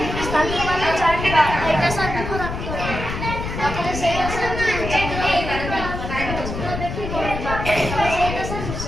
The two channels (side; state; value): left; noise; rumble, 5 dB below the sound